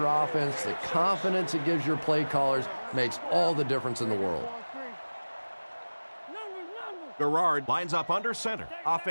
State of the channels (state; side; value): inverted; both; correlation -1.00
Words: offense, the confidence it gives your play callers makes all the difference in the world. Garrard lines up under center.